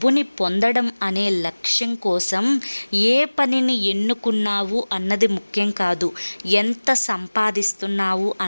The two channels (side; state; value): both; inverted; correlation -1.00